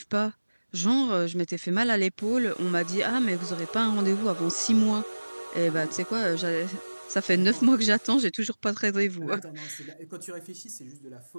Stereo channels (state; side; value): inverted; both; correlation -1.00